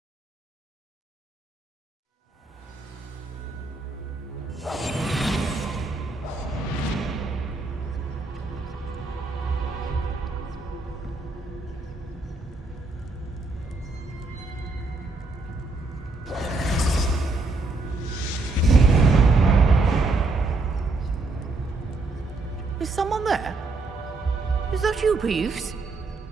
Is someone there? Is that you, Peeves?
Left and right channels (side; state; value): left; quieter; 3.5 dB